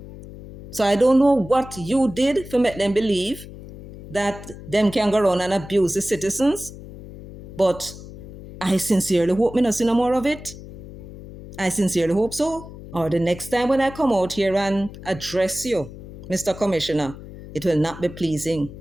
So I don't know what you did to make them believe that them can go around and abuse the citizens. But I sincerely hope me not see no more of it. I sincerely hope so. Or the next time when I come out here and address you, Mr. Commissioner, it will not be pleasing.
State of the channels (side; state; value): left; noise; hum, 15 dB below the sound